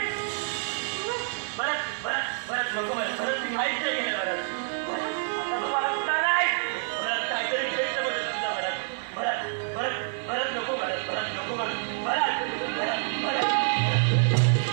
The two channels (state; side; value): silent; left; digital silence